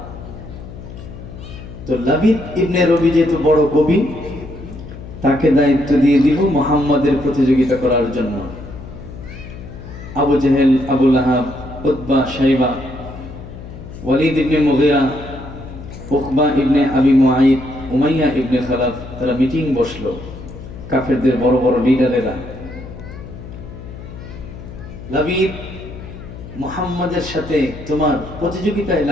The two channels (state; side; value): noise; left; hum, 13 dB below the sound